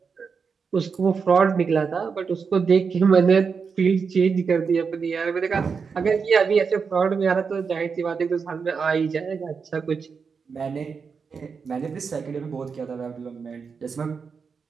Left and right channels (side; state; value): left; quieter; 5.6 dB